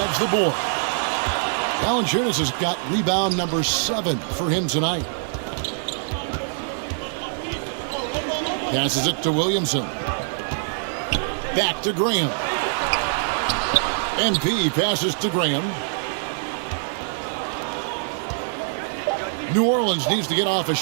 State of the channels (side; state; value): left; silent; digital silence